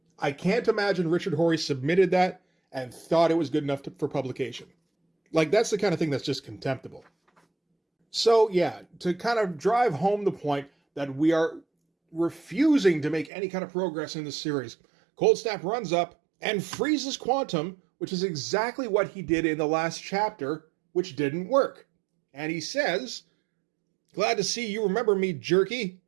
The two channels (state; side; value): drops out; left; at 13.3 s